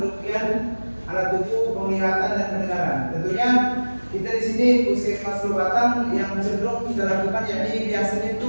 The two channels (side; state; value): both; inverted; correlation -1.00